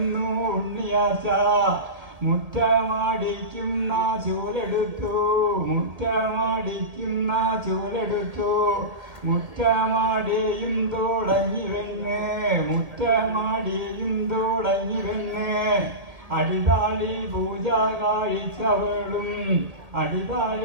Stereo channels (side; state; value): left; late; 1.8 ms